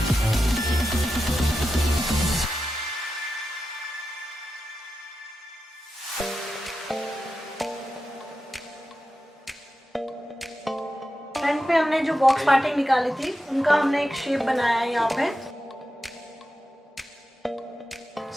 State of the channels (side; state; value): both; normal; correlation 0.90